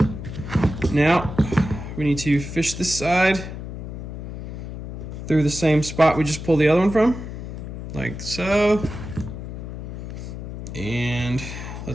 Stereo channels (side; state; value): left; noise; hum, 8 dB below the sound